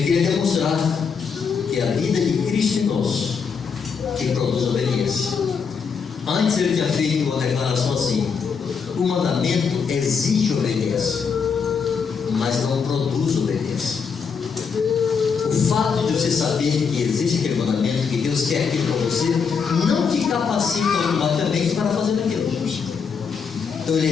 queria demonstrar que a vida de Cristo em nós que produz obediência. Antes ele tinha feito uma declaração assim: o mandamento exige obediência, mas não produz obediência. O fato de você saber que existe aquele mandamento, que Deus quer aquilo para você, não te capacita automaticamente para fazer aquilo. Então ele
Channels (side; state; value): right; quieter; 6.0 dB